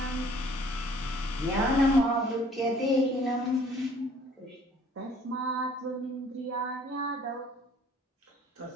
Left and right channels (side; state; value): both; normal; correlation 0.56